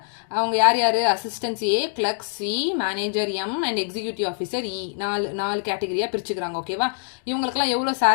அவங்க யார் யாரு? Assistant A, clerk C, manager M and executive officer E. நாலு கேட்டகரியா பிரிச்சுக்கறாங்க. ஓகேவா? இவங்களுக்குலாம் எவ்வளவு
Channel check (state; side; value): silent; right; 63 dB below the other